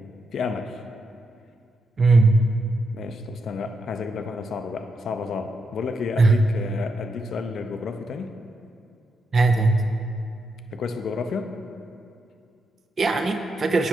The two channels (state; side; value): normal; both; correlation 0.83